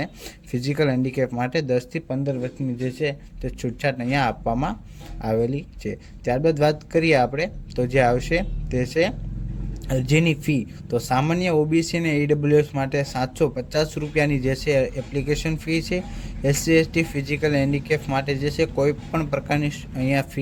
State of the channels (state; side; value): identical; both; correlation 1.00